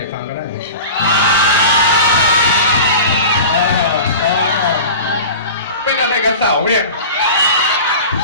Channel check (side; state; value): both; inverted; correlation -0.35